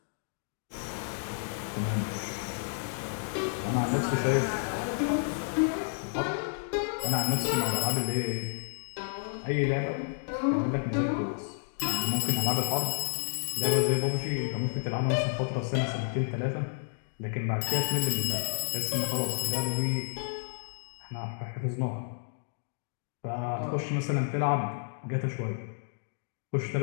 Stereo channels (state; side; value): silent; right; digital silence